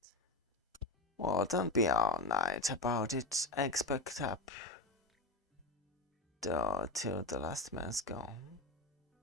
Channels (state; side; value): quieter; right; 3.0 dB